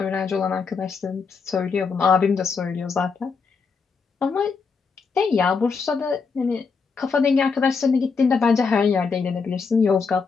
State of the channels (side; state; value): right; quieter; 5.1 dB